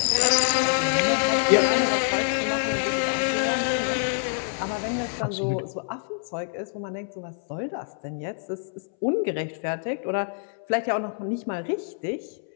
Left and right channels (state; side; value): silent; right; 61 dB below the other